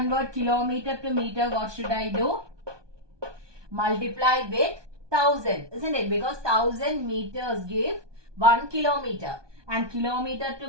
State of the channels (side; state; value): left; late; 1.2 ms